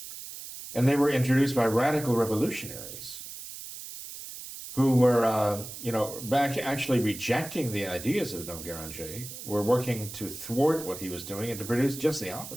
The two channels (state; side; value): noise; right; hiss, 11 dB below the sound